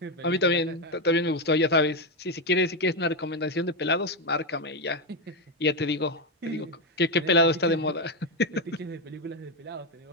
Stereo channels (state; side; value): normal; both; correlation 0.07